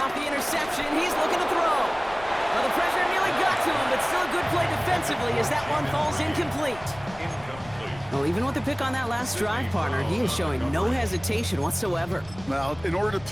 the interception. He's looking to throw. Well, the pressure nearly got to him, but still a good play defensively as that one falls incomplete. Well, even with the pick on that last drive, partner, he is showing no hesitation whatsoever. Well, in order to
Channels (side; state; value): left; noise; rumble, 20 dB below the sound